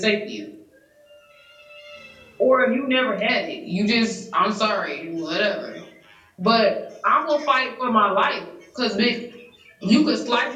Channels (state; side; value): identical; both; correlation 1.00